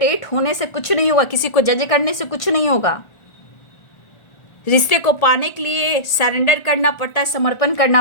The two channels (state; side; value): late; right; 1.4 ms